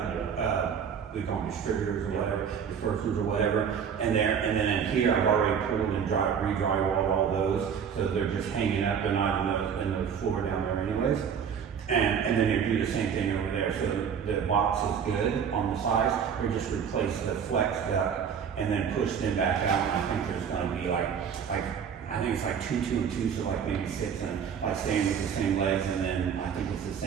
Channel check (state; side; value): quieter; left; 7.4 dB